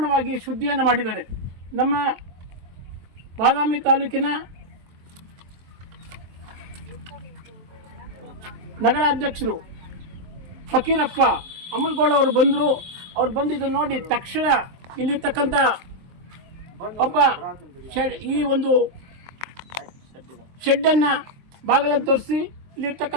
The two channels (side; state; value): left; late; 23 ms